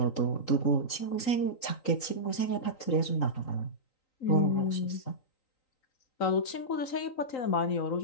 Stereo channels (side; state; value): right; late; 3.9 ms